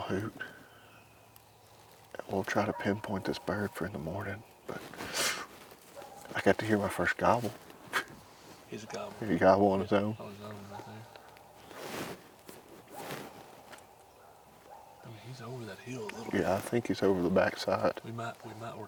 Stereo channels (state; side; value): identical; both; correlation 1.00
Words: We'll try to pinpoint this bird for in the morning, but I got to hear my first gobble. He's a gobble. He gobble on his own. On his own right there. I mean, he's over that hill a little bit. Yeah, I think he's over the backside. We might